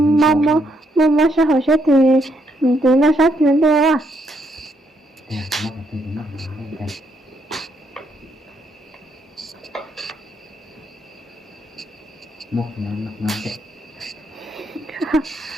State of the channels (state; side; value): normal; both; correlation 0.75